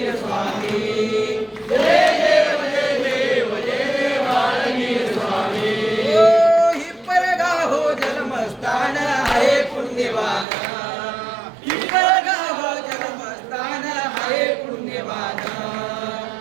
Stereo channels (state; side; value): drops out; left; at 10.5 s